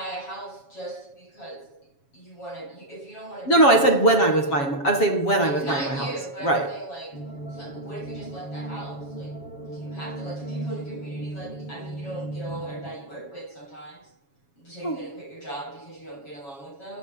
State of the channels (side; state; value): right; late; 7.2 ms